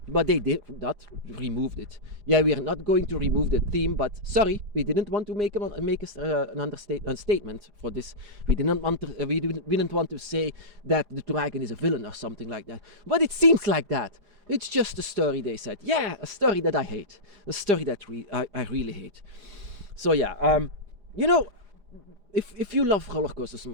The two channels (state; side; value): late; left; 4.9 ms